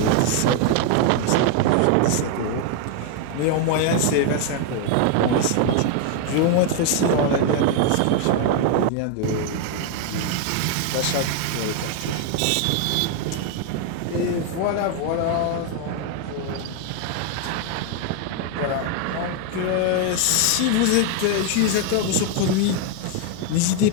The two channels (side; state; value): both; different; correlation 0.01